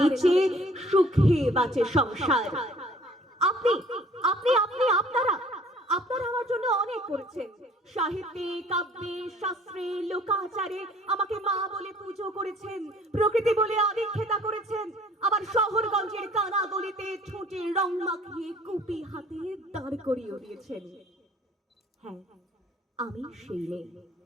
নিচে সুখে বাঁচে সংসার। আপনি আপনি আপনি আপনারা আপনারা আমার জন্য অনেক করেছেন। সাহিত্যে, কাব্যে, শাস্ত্রে, লোকাচারে আমাকে মা বলে পুজো করেছেন, প্রকৃতি বলে আদিক্ষেতা করেছেন, আবার শহরগঞ্জের কানা গলিতে ঠোঁটে রং মাখিয়ে কুপি হাতে দাঁড় করিয়ে দিয়েছেন। হ্যাঁ, আমি সেই মেয়ে।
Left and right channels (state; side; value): normal; both; correlation 0.55